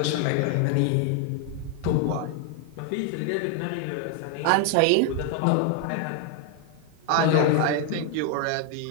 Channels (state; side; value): different; both; correlation 0.01